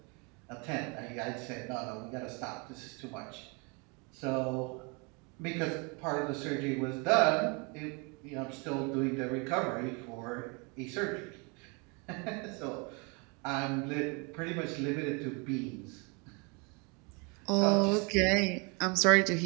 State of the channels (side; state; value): left; quieter; 31.5 dB